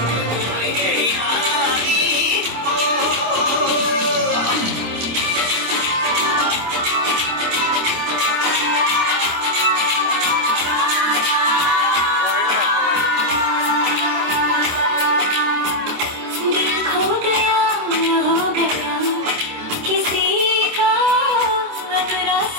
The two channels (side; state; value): left; late; 26 ms